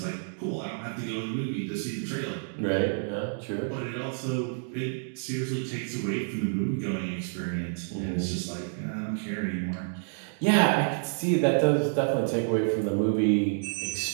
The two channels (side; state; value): left; silent; digital silence